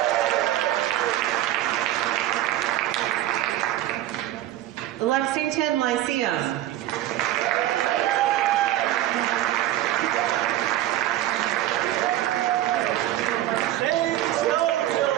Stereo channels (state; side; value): quieter; left; 13.8 dB